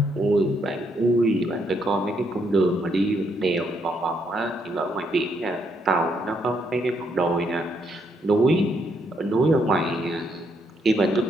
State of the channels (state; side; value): normal; both; correlation 0.74